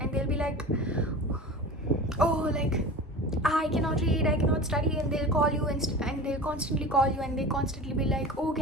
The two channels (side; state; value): both; normal; correlation 0.35